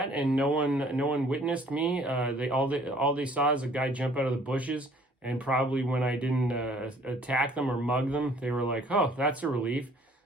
and no one witnessed me. They all they saw is a guy jump out of the bushes, and probably when I didn't attack them or mug them, they were like, "Oh, that's a relief."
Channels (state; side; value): normal; both; correlation 0.56